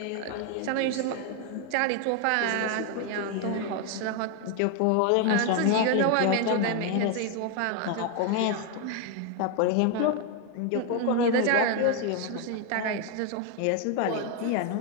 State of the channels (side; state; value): both; different; correlation 0.01